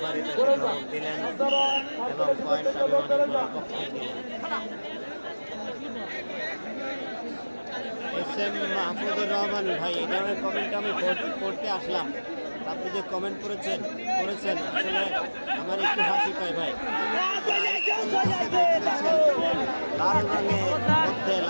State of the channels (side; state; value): both; inverted; correlation -1.00